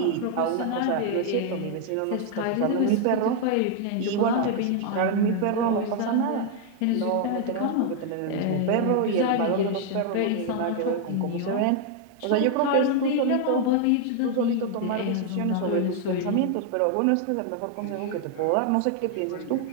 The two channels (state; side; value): different; both; correlation 0.00